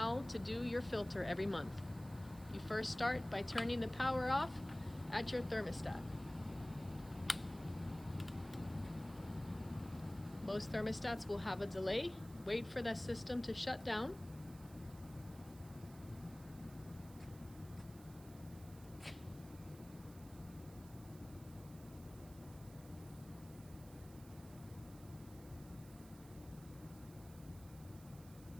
to do your filter every month. You first start by turning the power off at your thermostat. Most thermostats will have a delay. Wait for that system to shut down.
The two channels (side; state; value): right; noise; hiss, 20 dB below the sound